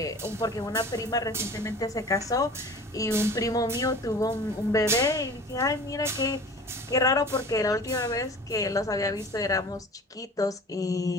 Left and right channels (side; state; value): both; normal; correlation 0.41